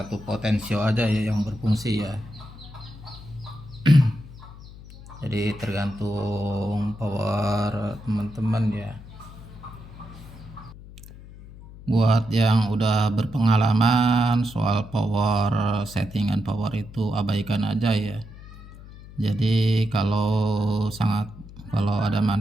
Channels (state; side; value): noise; left; hum, 17 dB below the sound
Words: potensio aja ya yang berfungsi ya. Jadi tergantung power teman-teman ya. Buat yang udah berpengalaman soal power, settingan power itu abaikan aja ya. Jadi kalau ada